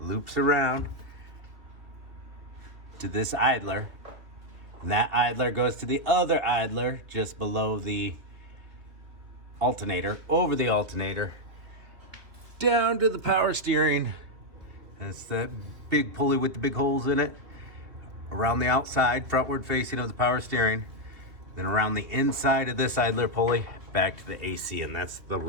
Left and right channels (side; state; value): left; late; 2.6 ms